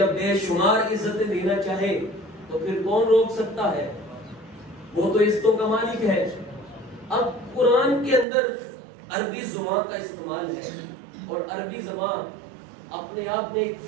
بے شمار عزتیں دینا چاہے تو پھر کون روک سکتا ہے؟ وہ تو عزتوں کا مالک ہے. اب قرآن کے اندر عربی زبان کا استعمال ہے، اور عربی زبان اپنے آپ میں ایک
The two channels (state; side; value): drops out; left; at 8.2 s